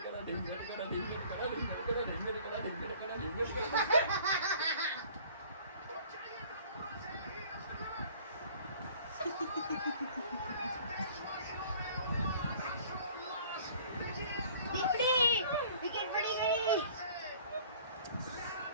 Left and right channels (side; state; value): both; inverted; correlation -0.51